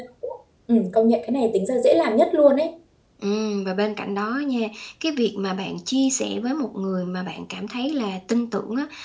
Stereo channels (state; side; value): identical; both; correlation 1.00